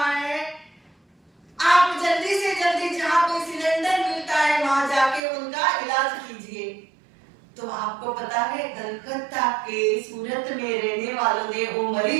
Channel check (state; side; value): drops out; left; at 5.2 s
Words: तो आपको पता है कलकत्ता के सूरत में रहने वालों ने वो